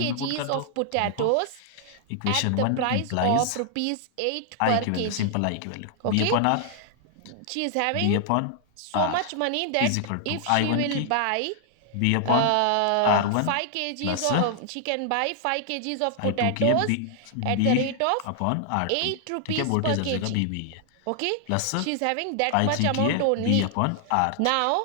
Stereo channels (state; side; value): different; both; correlation 0.00